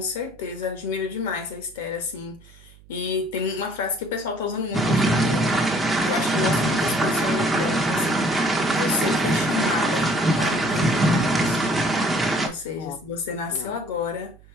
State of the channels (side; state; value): right; noise; hum, 24 dB below the sound